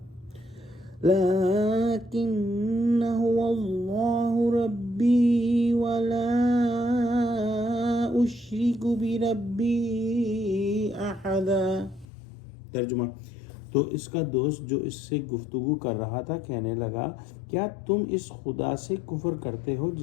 لكن هو الله ربي ولا أشرك بربي أحدا۔ ترجمہ: تو اس کا دوست جو اس سے گفتگو کر رہا تھا کہنے لگا، کیا تم اس خدا سے کفر کرتے ہو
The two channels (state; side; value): drops out; right; at 12.1 s